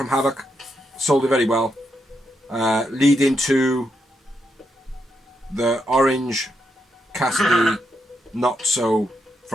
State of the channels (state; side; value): normal; both; correlation 0.82